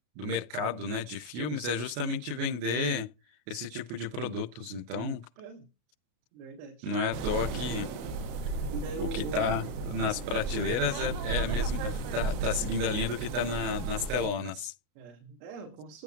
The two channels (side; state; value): left; late; 33 ms